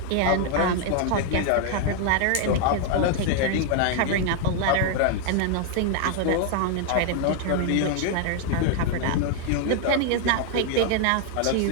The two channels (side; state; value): both; different; correlation 0.00